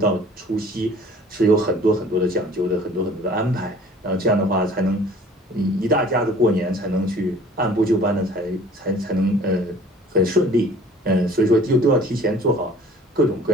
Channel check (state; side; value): normal; both; correlation 0.50